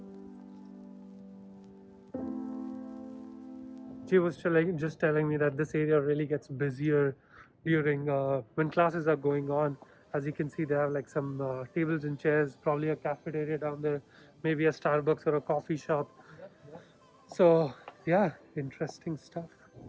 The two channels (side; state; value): both; identical; correlation 1.00